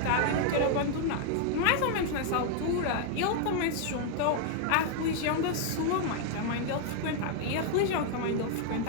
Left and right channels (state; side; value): different; both; correlation 0.00